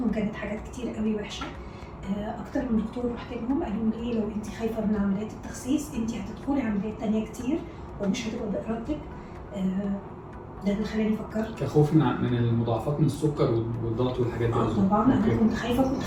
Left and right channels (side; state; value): both; identical; correlation 1.00